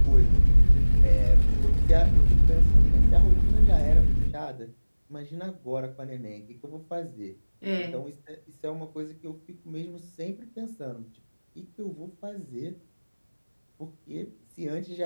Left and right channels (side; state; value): both; inverted; correlation -1.00